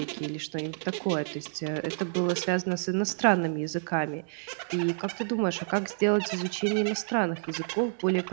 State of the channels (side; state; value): left; silent; digital silence